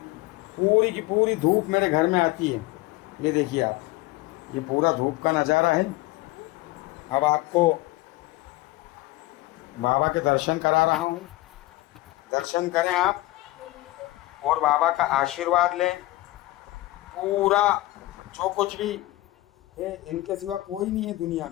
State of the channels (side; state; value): right; quieter; 18.8 dB